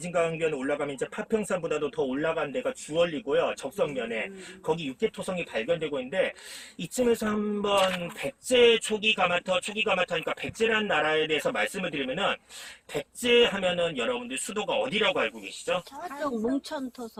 올라가면 이제 파평산보다도 더 올라간 데가 주얼리고요. 적성면에 거기 육계토성이 발견되고 있는데 이쯤에서 한번 백제 초기 가마터니까 백제란 나라에 대해서 말씀을 드리면은 백제 하면은 여러분들 수도가 어디라고 알고 계시죠? 저쪽 몽천토성.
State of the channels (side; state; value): both; identical; correlation 1.00